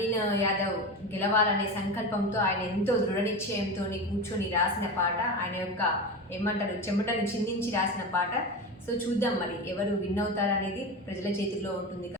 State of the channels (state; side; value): normal; both; correlation 0.24